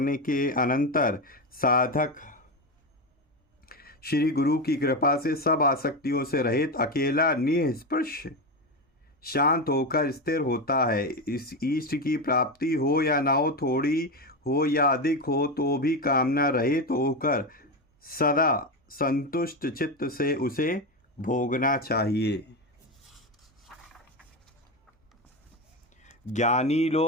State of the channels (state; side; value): normal; both; correlation 0.15